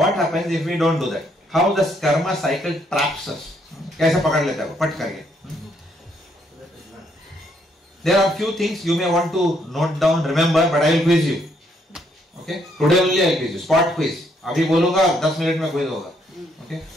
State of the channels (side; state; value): both; normal; correlation 0.71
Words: happens if we don't do that. How the karma cycle traps us. कैसे पकड़ लेता है वो पट करके. There are few things you may want to note down, remember, but I will quiz you. Okay? Today only I will quiz you. Spot quiz. अभी बोलूँगा 10 minute में quiz होगा. Okay?